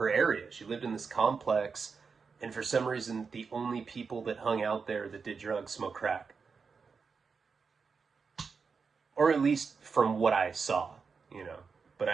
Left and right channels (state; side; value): quieter; left; 5.3 dB